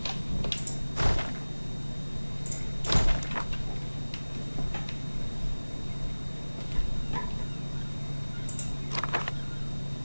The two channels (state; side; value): inverted; both; correlation -1.00